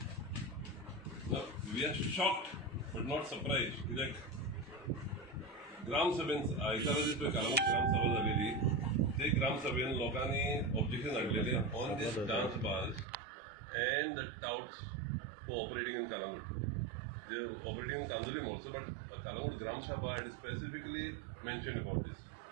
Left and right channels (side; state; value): left; drops out; at 13.1 s